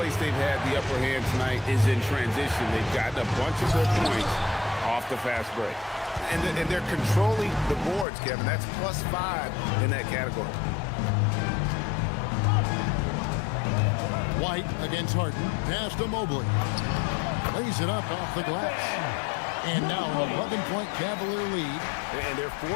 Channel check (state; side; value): drops out; right; at 8.1 s